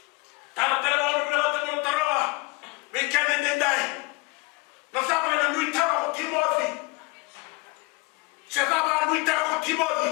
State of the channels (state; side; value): quieter; right; 26.7 dB